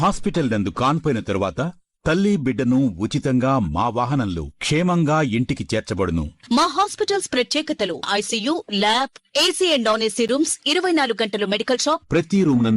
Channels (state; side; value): identical; both; correlation 1.00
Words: హాస్పిటల్ నందు కాన్పోయిన తరువాత తల్లి బిడ్డను ఉచితంగా మా వాహనంలో క్షేమంగా ఇంటికి చేర్చబడును. మా హాస్పిటల్స్ ప్రత్యేకతలు: ICU, lab, AC and non AC rooms, 24 గంటలు మెడికల్ షాప్, ప్రతి రూమ్